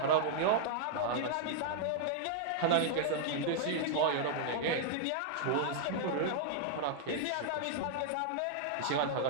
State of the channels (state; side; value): different; both; correlation 0.00